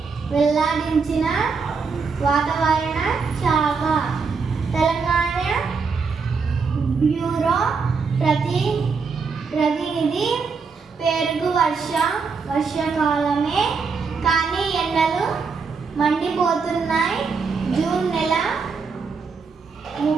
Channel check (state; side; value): quieter; left; 5.1 dB